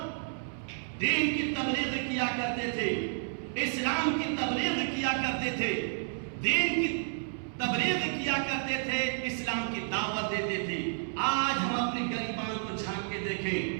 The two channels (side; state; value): left; silent; 57 dB below the other